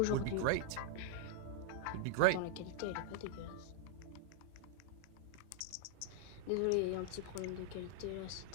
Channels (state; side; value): different; both; correlation 0.00